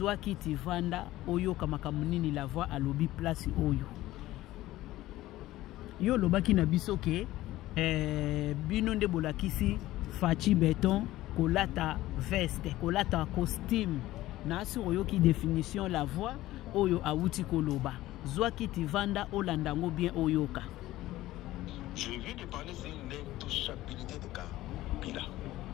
kiti vanda oyo kamakamuni la voix à lobby place oyo. Yo lobaki na biso ke bino nde bolakisi fachi beton kolata veste kolata costume na si oyo ki définition la voix oyo awuti koloba zwa kiti vanda olandango bien oyoka. Je viens de parler sur l'intouchabilité de Kabila.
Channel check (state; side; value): quieter; right; 16.2 dB